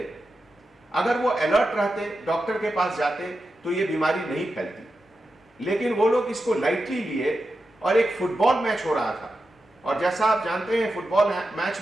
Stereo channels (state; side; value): normal; both; correlation 0.90